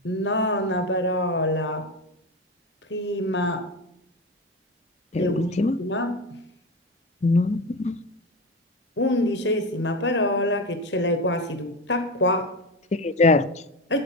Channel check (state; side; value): normal; both; correlation 0.22